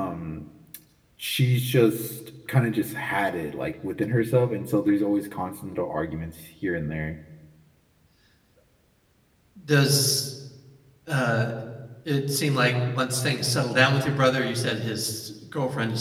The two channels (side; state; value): both; identical; correlation 1.00